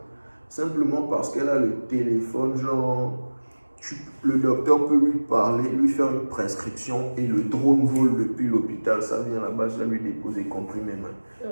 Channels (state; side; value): inverted; both; correlation -1.00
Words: Simplement parce qu'elle a le téléphone, genre, le docteur peut lui parler, lui faire une prescription et le drone vole depuis l'hôpital, ça vient là-bas, ça lui dépose des comprimés, man.